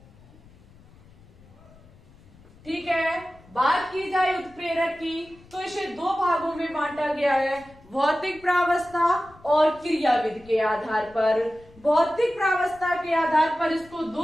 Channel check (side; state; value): left; noise; rumble, 25 dB below the sound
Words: ठीक है, बात की जाए उत्प्रेरक की तो इसे 2 भागों में बांटा गया है, भौतिक प्रावस्था और क्रियाविधि के आधार पर। भौतिक प्रावस्था के आधार पर इसको 2